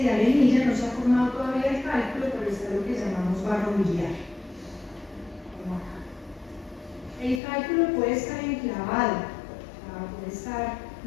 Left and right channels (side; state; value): right; drops out; at 7.4 s